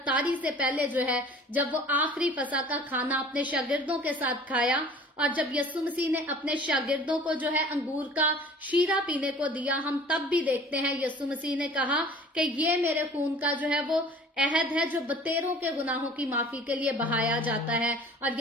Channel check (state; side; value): normal; both; correlation 0.46